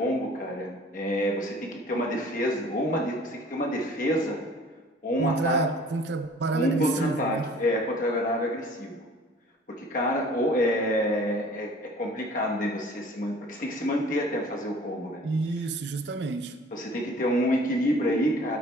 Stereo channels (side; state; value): both; normal; correlation 0.50